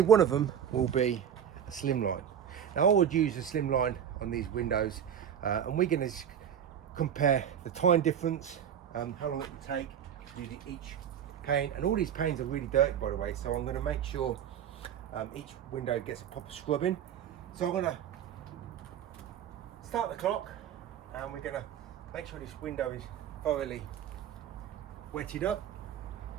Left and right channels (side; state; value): left; quieter; 9.1 dB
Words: one of them will be a slimline. Now I would use a slimline on these windows, and we're going to compare the time difference, how long it will take to do each pane, and all these panes are really dirty, by the way, so I'm going to make sure each window gets a proper scrubbing. So I'm going to start the clock, and we're going to make sure this window is thoroughly wetted up,